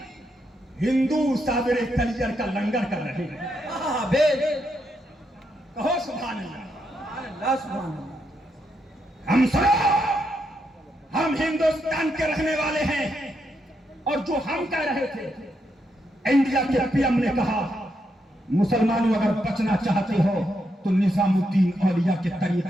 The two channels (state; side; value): normal; both; correlation 0.80